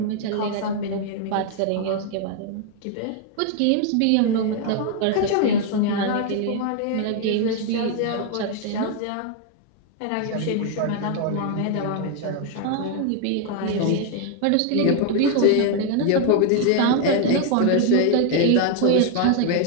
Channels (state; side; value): different; both; correlation 0.00